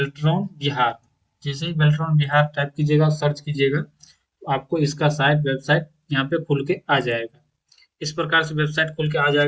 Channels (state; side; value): identical; both; correlation 1.00